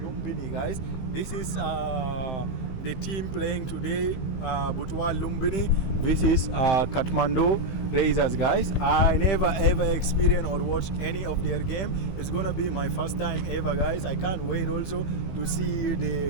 Lumbini, guys. This is the team playing today, Butwal Lumbini. This is Kathmandu Rayzrs, guys. I never ever experienced or watched any of their game. It's gonna be my first time ever, guys. I can't wait also to see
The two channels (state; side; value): late; right; 15 ms